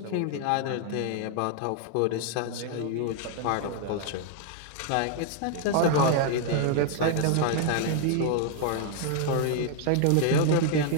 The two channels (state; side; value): different; both; correlation 0.00